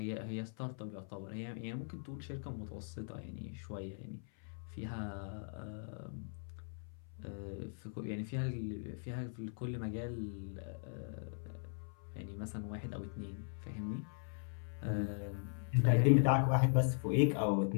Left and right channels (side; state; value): right; silent; 51 dB below the other